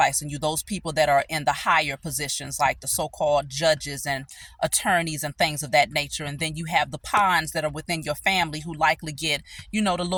you. Those people that are in the higher positions, like the so-called judges and attorneys and things of that nature. And then you have the pawns that are within your family, who likely get, you know, the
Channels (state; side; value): identical; both; correlation 1.00